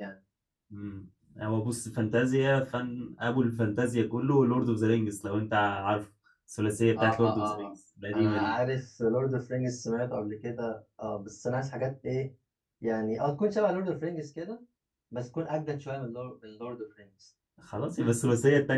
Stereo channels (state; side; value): identical; both; correlation 1.00